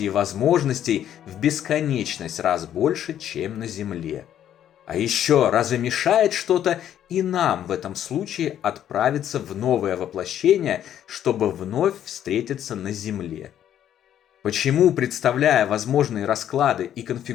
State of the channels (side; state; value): right; quieter; 10.6 dB